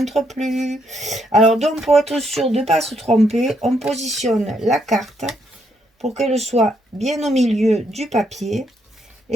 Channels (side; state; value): both; normal; correlation 0.75